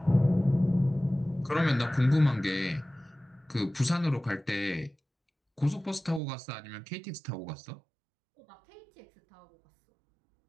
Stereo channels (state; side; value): drops out; left; at 6.2 s